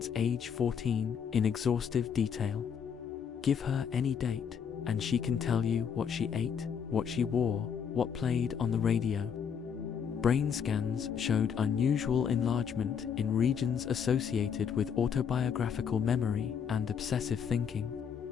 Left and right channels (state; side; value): quieter; right; 7.3 dB